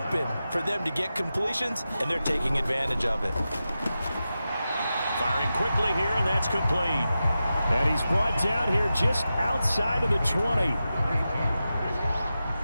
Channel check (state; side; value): inverted; both; correlation -0.92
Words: for them to get completions, and they're taking advantage of it. Firing quickly here, and that's complete. And he's brought down here just outside of the 20.